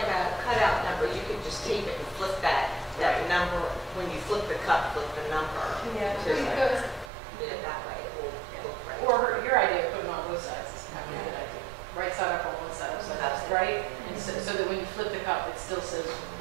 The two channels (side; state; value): left; drops out; at 7.1 s